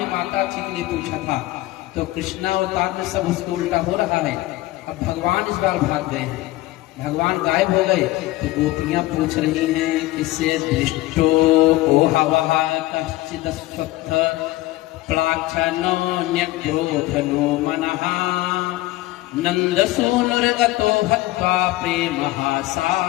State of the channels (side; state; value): right; quieter; 17.8 dB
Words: माता जी के लिए पूछा था, तो कृष्णावतार में सब उसको उल्टा हो रहा है। अब भगवान इस बार भाग गए हैं, भगवान गायब हो गए, तो गोपियां पूछ रही हैं किससे। दृष्टो ओ हवा कश्चिद स्वत्थ प्लाक्षनो न्यग्रोधनो मनः, नंदसूनुर्गतो हत्वा प्रेमः